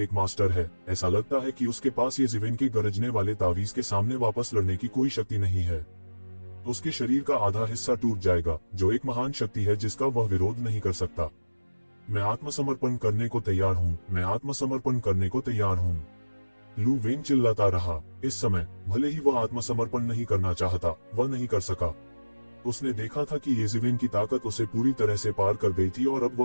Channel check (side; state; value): both; inverted; correlation -1.00